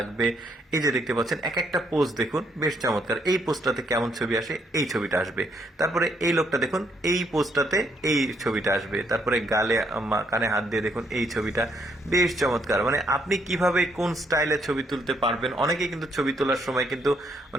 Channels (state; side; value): normal; both; correlation 0.72